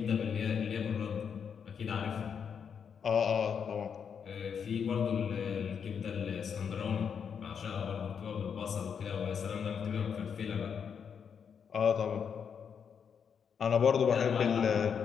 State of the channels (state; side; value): quieter; right; 7.0 dB